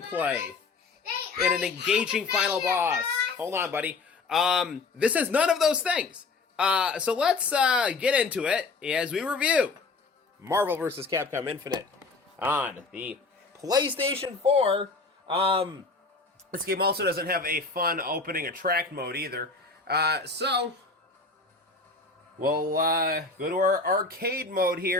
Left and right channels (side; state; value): right; quieter; 4.0 dB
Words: and an engaging final boss. Hold on, buddy. This has none of those things. So let's get into it as we review Marvel vs. Capcom Infinite on the PlayStation 4. This game also doesn't have a fun opening attract mode either. So we'll go to our arcade mode